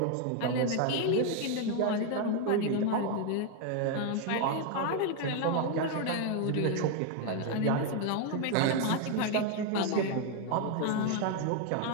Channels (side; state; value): both; different; correlation 0.01